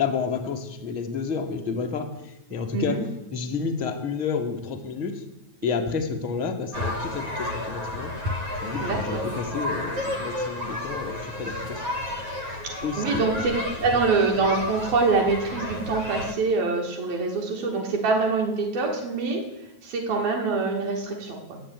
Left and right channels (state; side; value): late; left; 9.3 ms